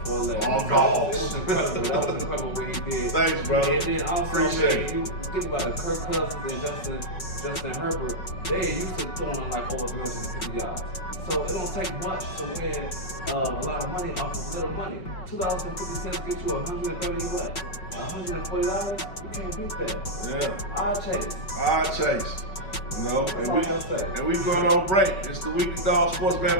4-legger. Oh, no. It was incredible. That was incredible what he did. Thanks, brother. And then also, appreciate it. You think about it, Kirk Cousins and Justin Herbert, they used to throwing like over 350 yards. So it don't take much to win a lot of money off of little money. $2.50 get you $130 what? $140? You can't beat that. Yeah. Odd chase. You know, and we going on break. It's the Weekly Dog Sports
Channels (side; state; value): right; late; 5.3 ms